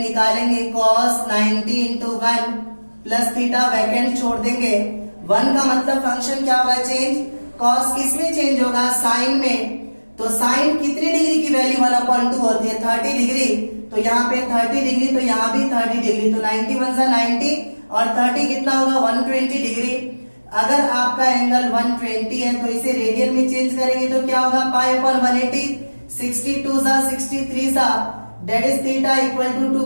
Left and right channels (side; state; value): both; inverted; correlation -1.00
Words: निकालेंगे, cos 90 into 1 plus theta vacant छोड़ देंगे। 1 का मतलब फंक्शन क्या होगा, चेंज। cos किसमें चेंज होगा, साइन में। तो साइन कितनी डिग्री की वैल्यू 1/2 होती है, 30 डिग्री। तो यहाँ पे 30 डिग्री, तो यहाँ भी 30 डिग्री। तो 91 से 90 और 30 कितना होगा, 120 डिग्री। अगर आपका एंगल 120 है तो इसे रेडियन में चेंज करेंगे तो क्या होगा, पाई अपॉन 180, 62 सा 63 सा that is theta equal to 2